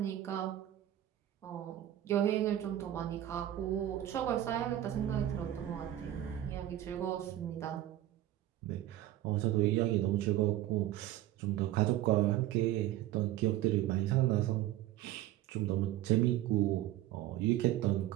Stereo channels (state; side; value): quieter; left; 13.5 dB